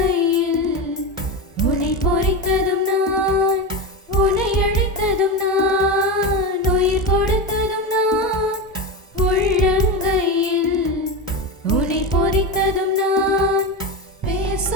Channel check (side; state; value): both; normal; correlation 0.18